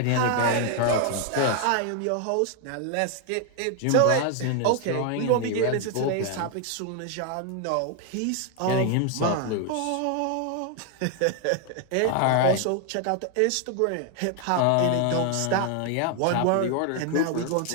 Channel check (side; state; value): both; different; correlation 0.00